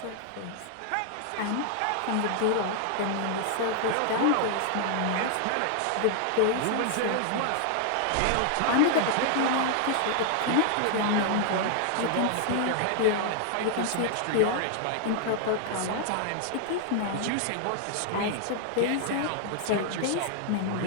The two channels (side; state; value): both; different; correlation 0.00